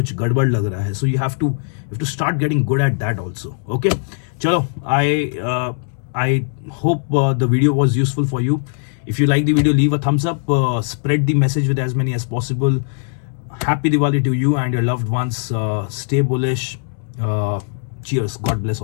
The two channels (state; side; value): silent; right; 66 dB below the other